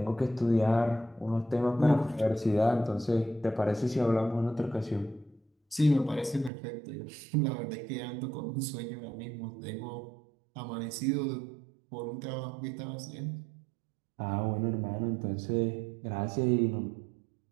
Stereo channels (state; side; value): drops out; left; at 6.5 s